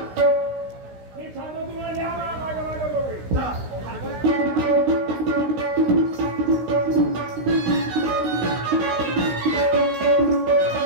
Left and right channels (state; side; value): late; left; 16 ms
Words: मी सांगतो तुम्हाला द्या माझ्या माझ्या दोघे.